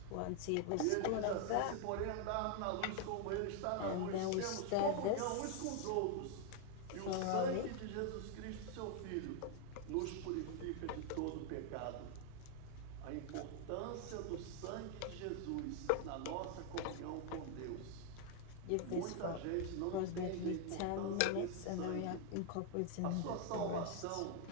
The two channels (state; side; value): different; both; correlation 0.00